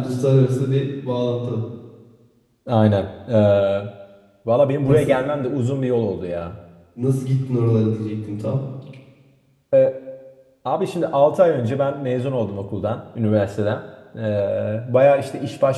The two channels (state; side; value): identical; both; correlation 1.00